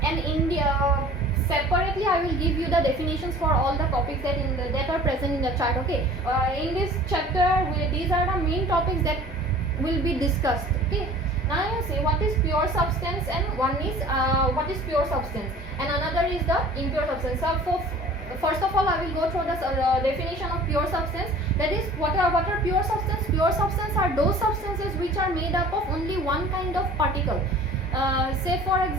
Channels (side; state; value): both; normal; correlation 0.46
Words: and separately I will give you the definitions for all the topics that are present in the chart. Okay. In this chapter, these are the main topics that will be discussed. Okay. Now you see what is pure substance, and one is what is pure substance, and another is the impure substance. So first of all, I will go through the definition of pure substance. That is, what are pure substance? Pure substance are those substances which are made up of only one kind of particle. Say for